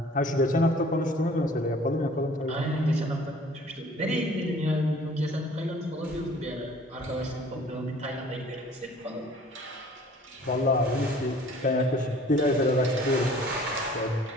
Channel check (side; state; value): both; normal; correlation 0.52